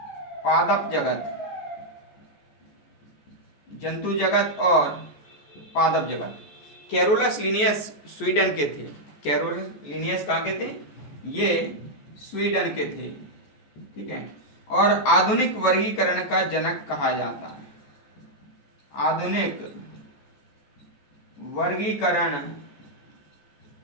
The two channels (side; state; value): right; late; 14 ms